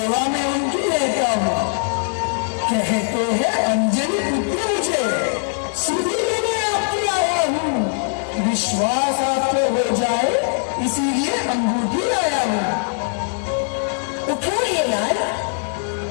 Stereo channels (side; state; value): right; silent; digital silence